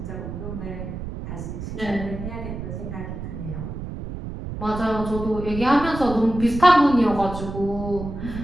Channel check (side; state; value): right; noise; rumble, 8 dB below the sound